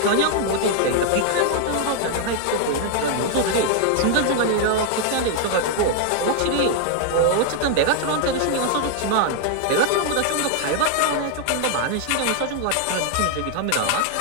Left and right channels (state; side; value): different; both; correlation 0.00